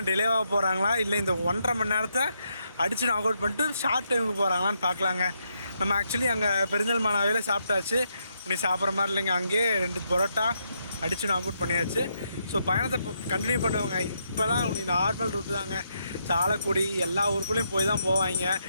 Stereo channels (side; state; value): both; inverted; correlation -0.79